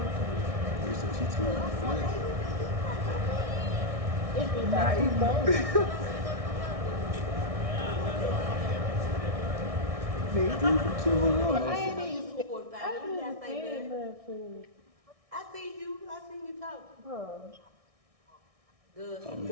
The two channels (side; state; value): left; late; 1.6 ms